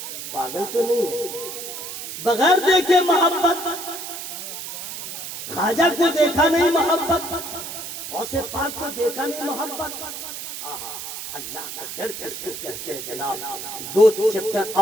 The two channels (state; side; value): noise; right; hiss, 8 dB below the sound